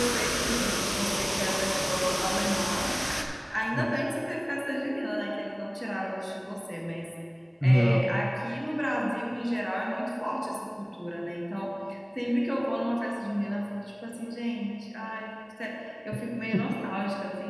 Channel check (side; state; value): both; identical; correlation 1.00